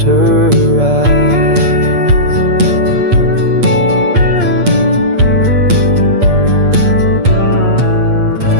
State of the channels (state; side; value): late; left; 8.5 ms